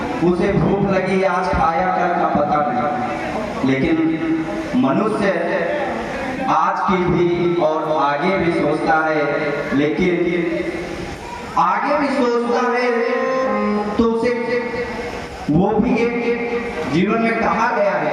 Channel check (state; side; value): identical; both; correlation 1.00